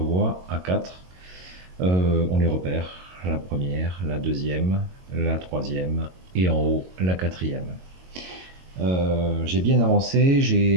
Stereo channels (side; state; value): left; late; 22 ms